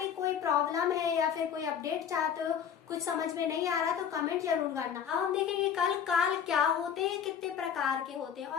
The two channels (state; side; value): quieter; right; 8.1 dB